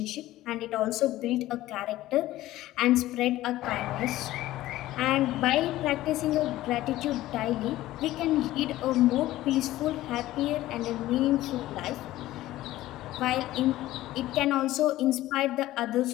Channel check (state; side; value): quieter; right; 15.7 dB